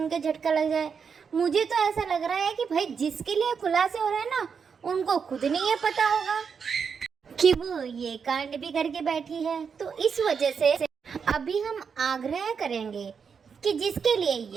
के झटका लग जाए। मुझे तो ऐसा लग रहा है कि भाई जिसके लिए खुलासे हो रहे हैं ना, उनको खुद नहीं ये पता होगा कि वो ये कांड भी करके बैठी है। तो इस वजह से अभी हम आग्रह करेंगे कि जिसके लिए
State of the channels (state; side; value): quieter; left; 6.2 dB